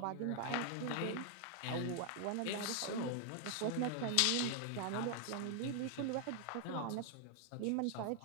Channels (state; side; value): different; both; correlation 0.00